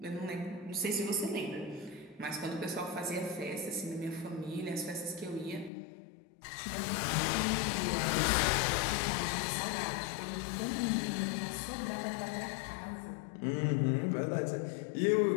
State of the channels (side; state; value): right; drops out; at 5.7 s